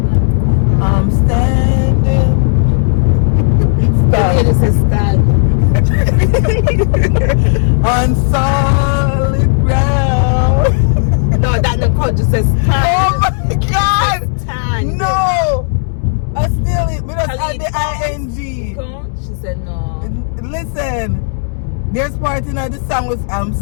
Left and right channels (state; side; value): silent; right; 72 dB below the other